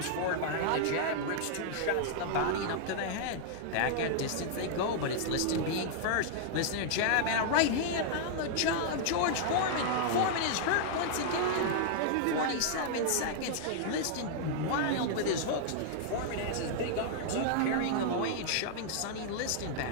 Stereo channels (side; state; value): both; different; correlation -0.01